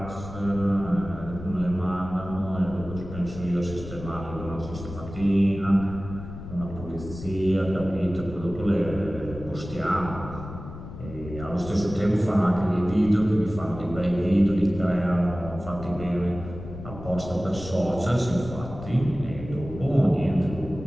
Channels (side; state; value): left; noise; rumble, 12 dB below the sound